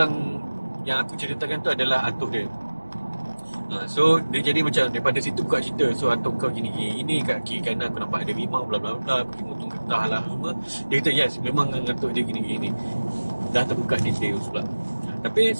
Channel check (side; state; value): both; inverted; correlation -1.00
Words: yang aku ceritakan tu adalah atuk dia. So dia jadi macam daripada situ buka cerita. So atuk kau gini, kat kiri kanan aku nampak ada rimau, bla bla bla, pergi motong getah lah semua. Dia kata yes, memang atuk dia gini. Dah terbuka detail pula. Tapi